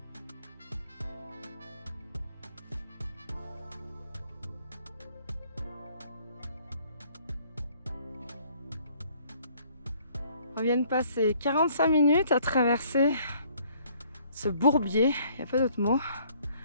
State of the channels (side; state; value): both; inverted; correlation -0.61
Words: On vient de passer 45 minutes à traverser ce bourbier, il n'y a pas d'autre mot.